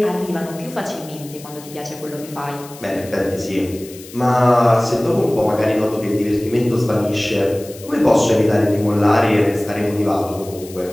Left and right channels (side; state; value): left; noise; hiss, 18 dB below the sound